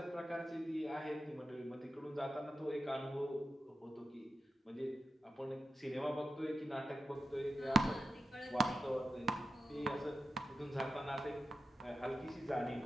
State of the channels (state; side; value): normal; both; correlation 0.90